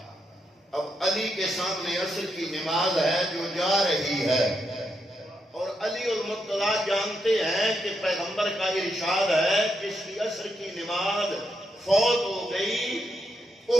اب علی کے سامنے عصر کی نماز ہے جو جا رہی ہے، اور علی المرتضیٰ جانتے ہیں کہ پیغمبر کا ارشاد ہے جس کی عصر کی نماز فوت ہو گئی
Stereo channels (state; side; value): normal; both; correlation 0.81